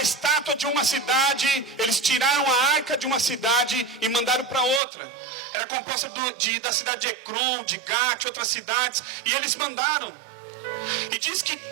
estátua de uma cidade, eles tiraram a arca de uma cidade e mandaram para outra. Era composta da cidade de Ecrom, de Gate, outras cidades, e eles mandaram. E diz que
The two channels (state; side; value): drops out; left; at 4.8 s